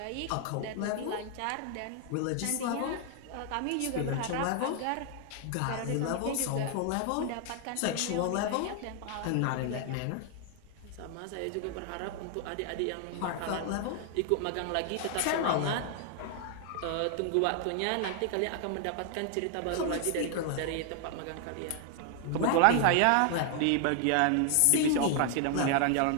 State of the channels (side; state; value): both; different; correlation 0.00